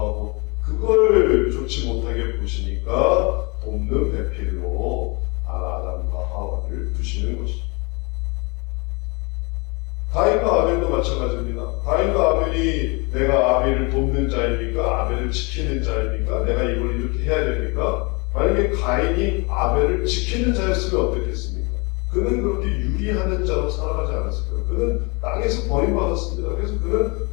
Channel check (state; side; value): quieter; right; 29.6 dB